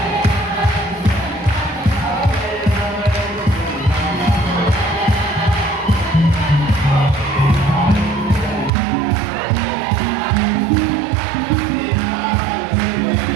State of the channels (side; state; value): left; drops out; at 8.7 s